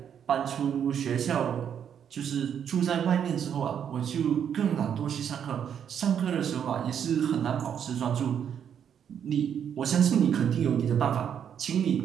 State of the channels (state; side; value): quieter; left; 8.5 dB